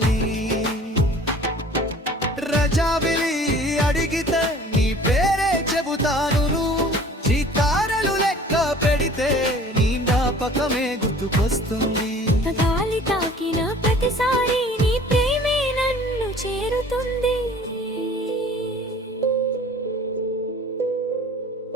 రజావిలి అడిగితే నీ పేరే చెబుతాను చితారలు లెక్క పెడితే నీ జ్ఞాపకమే గుర్తుకొస్తుంది గాలి తాకిన ప్రతిసారి నీ ప్రేమే నన్ను చేరుతుంది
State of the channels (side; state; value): both; normal; correlation 0.48